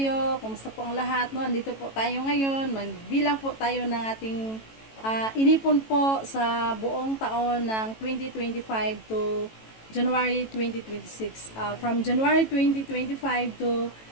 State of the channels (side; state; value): right; late; 18 ms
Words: Kumusta po ang lahat? No? Andito po tayo ngayon. Magbilang po tayo ng ating inipon po sa buong taon ng 2025 to January 2026. From January 2025 to